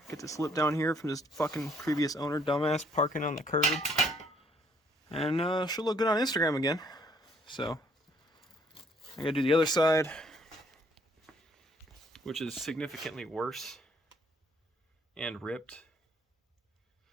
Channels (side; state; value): both; normal; correlation 0.65